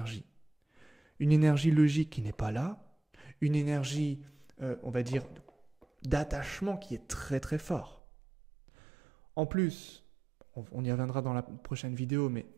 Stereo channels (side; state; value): left; drops out; at 8.0 s